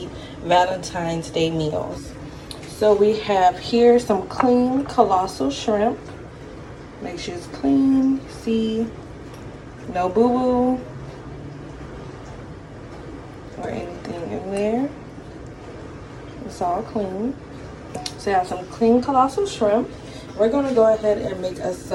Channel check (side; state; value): both; identical; correlation 1.00